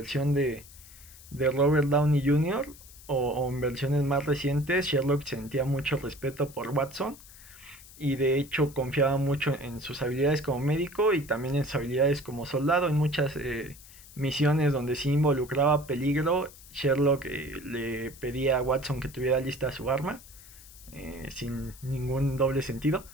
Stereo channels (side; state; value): left; noise; hiss, 20 dB below the sound